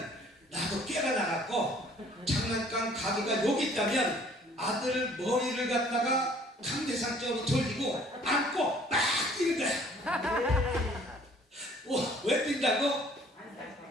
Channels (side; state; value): both; normal; correlation 0.56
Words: 나도 꾀가 나갔고, 장난감 가게가 여기 있다면 아들 머리를 갖다가 강대상적으로 돌리고 안고 막 뛰는 거야. 왜 뛴다고?